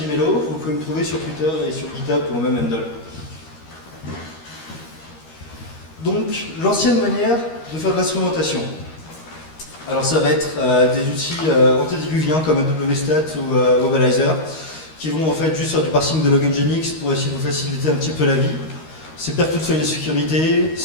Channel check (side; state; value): right; late; 13 ms